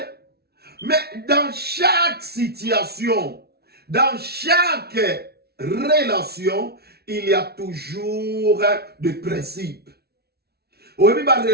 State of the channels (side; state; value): left; late; 0.46 ms